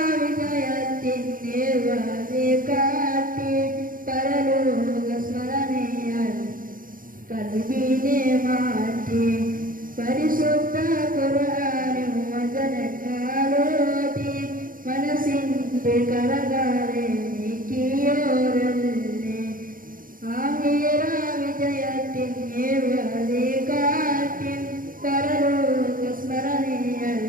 വിജയത്തിന്റെ വഴി കാട്ടി പരലോക സ്മരണയാൽ കൽബിനെ മാറ്റി. പരിശുദ്ധ ഖുർആനിൻ വചനങ്ങളോതി മനസ്സിന്റെ കരകളെ നീക്കിയോരല്ലേ, ആഖിറ വിജയത്തിന്റെ വഴി കാട്ടി പരലോക സ്മരണയാൽ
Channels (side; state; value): left; late; 0.40 ms